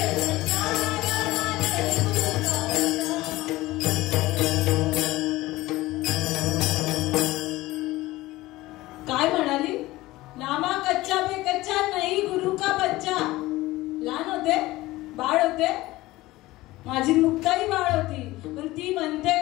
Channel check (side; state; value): right; quieter; 18.4 dB